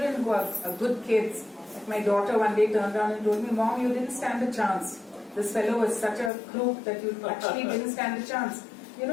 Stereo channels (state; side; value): drops out; right; at 6.3 s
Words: who are good kids, like my daughter one day turned around and told me, Mom, you didn't stand a chance. This fellow was such a crook that you actually didn't stand a chance.